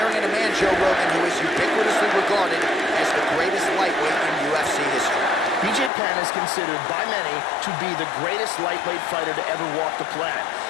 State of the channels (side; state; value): right; drops out; at 5.9 s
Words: at a man, Joe Rogan, who is ubiquitously regarded as the greatest lightweight in UFC history. BJ Penn is considered by many to be the greatest lightweight fighter to ever walk the planet.